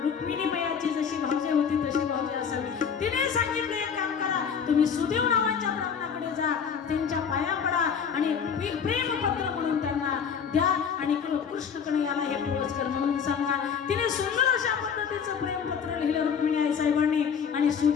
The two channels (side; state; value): right; quieter; 6.9 dB